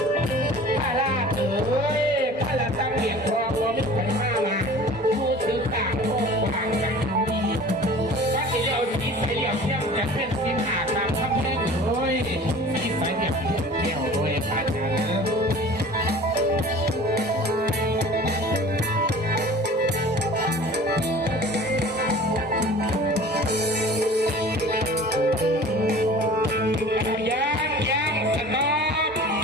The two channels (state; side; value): normal; both; correlation 0.43